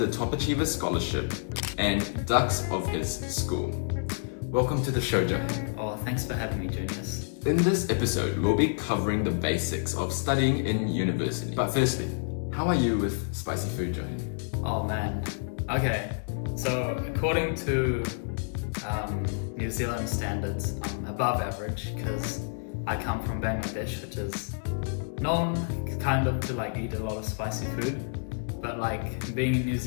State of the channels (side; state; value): right; silent; 59 dB below the other